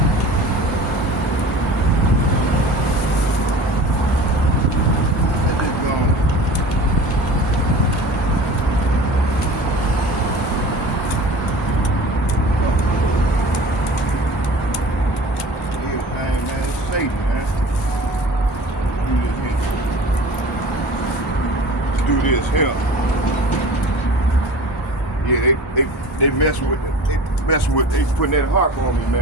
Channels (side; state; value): both; normal; correlation 0.40